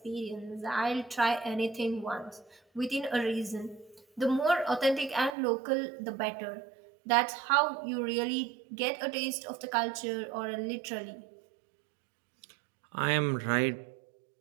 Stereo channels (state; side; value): drops out; left; at 5.3 s